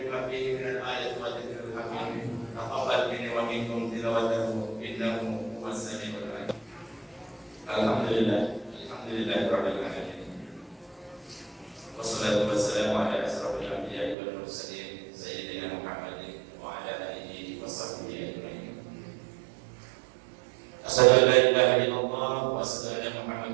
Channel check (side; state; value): left; drops out; at 14.2 s